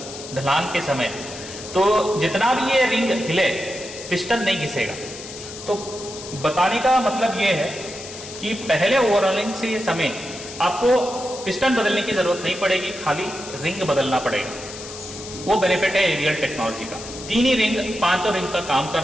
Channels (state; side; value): noise; left; hiss, 12 dB below the sound